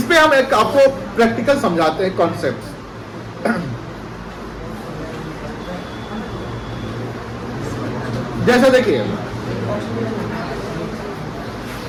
पे हम एक आपको प्रैक्टिकल समझाते हैं कॉन्सेप्ट। जैसे देखिए,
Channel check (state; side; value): identical; both; correlation 1.00